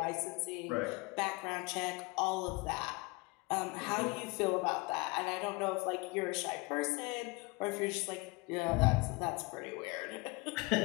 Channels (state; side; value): quieter; right; 25.8 dB